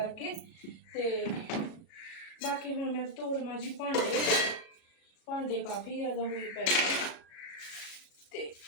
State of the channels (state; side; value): late; right; 37 ms